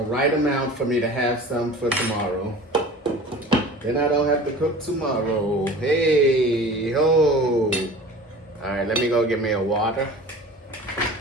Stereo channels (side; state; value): both; normal; correlation 0.40